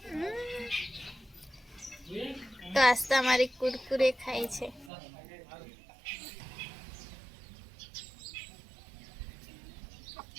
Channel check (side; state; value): left; drops out; at 4.9 s